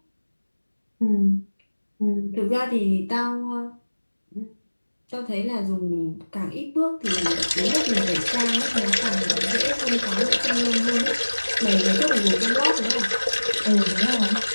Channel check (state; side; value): inverted; both; correlation -1.00